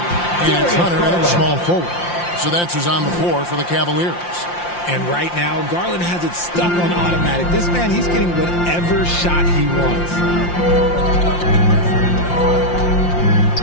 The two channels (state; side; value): late; right; 5.7 ms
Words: it's Hunter at small forward. So that's who's on the floor for the Cavaliers. And right now, Garland has it stuck on automatic. This man, he's getting whatever shot he wants.